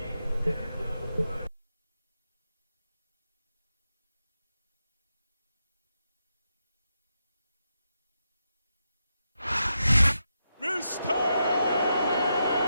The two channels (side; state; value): both; inverted; correlation -0.85